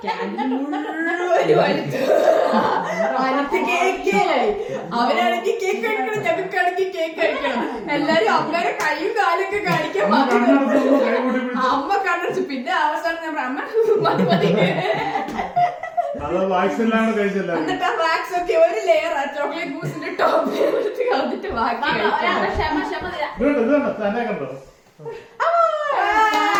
അവരാണെങ്കിൽ കേക്ക് കഴിക്കണം, ഞങ്ങൾക്കാണെങ്കിൽ കേക്ക് കഴിക്കണം. എല്ലാരും അമ്മയുടെ കൈയും കാലൊക്കെ കാണിക്കാൻ അമ്മ കണ്ടു. പിന്നെ അവസാനം ഞാൻ അമ്മ മതി മതി എന്നിട്ട് ആ വാക്സ് ഒക്കെ ഒരു ലെയർ ആ ചോക്ലേറ്റ് മൂസിന്റെ ടോപ്പ് കളഞ്ഞിട്ട് ബാക്കി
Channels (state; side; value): identical; both; correlation 1.00